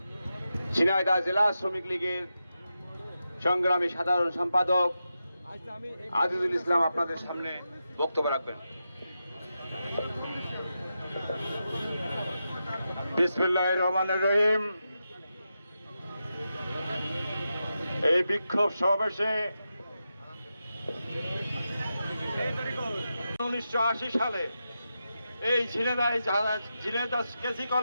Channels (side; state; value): both; inverted; correlation -0.89